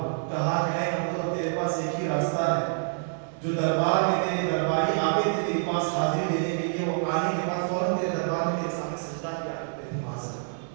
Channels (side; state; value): left; silent; digital silence